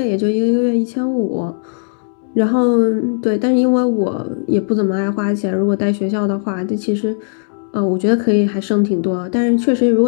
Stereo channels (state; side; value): silent; right; digital silence